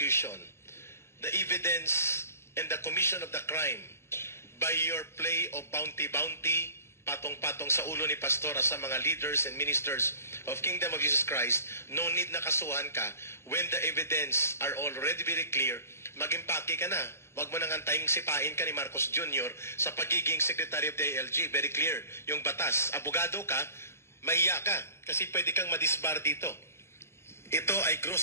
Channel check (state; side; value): late; right; 0.12 ms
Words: the evidence and the commission of the crime by your play of bounty, patong-patong sa ulo ni Pastora sa mga leaders and ministers of Kingdom of Jesus Christ, no need na kasuhan ka. When the evidence are already very clear, mag-impake ka na. Huwag mo nang antayin sipain ka ni Marcos Jr. sa pagiging Secretary of the ALG. Very clear. Yung batas. Abogado ka, mahiya ka. Kasi pwede kang madisbar dito. Ito ay